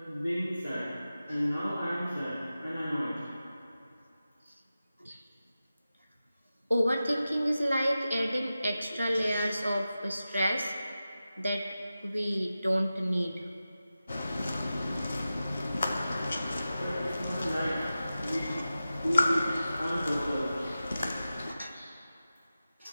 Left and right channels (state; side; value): inverted; both; correlation -0.94